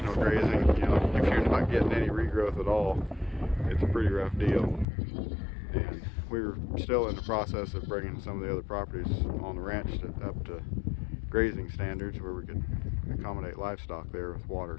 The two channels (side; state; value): right; drops out; at 4.9 s